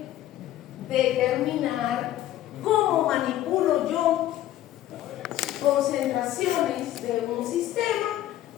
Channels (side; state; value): right; quieter; 13.4 dB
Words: determinar cómo manipulo yo concentraciones de un sistema